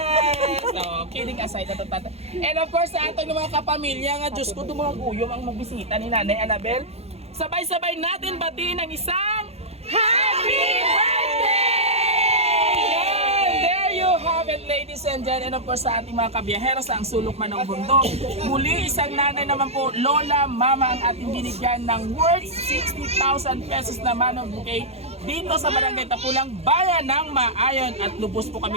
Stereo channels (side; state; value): left; late; 0.30 ms